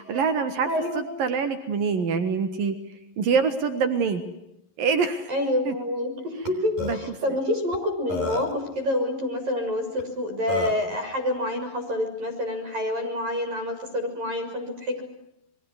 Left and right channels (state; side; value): late; left; 11 ms